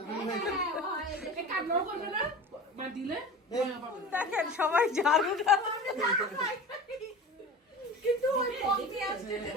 দেখেন সবাই ঝাড়ুটা কিন্তু ওই পথে আসছে যে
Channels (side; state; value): both; normal; correlation 0.34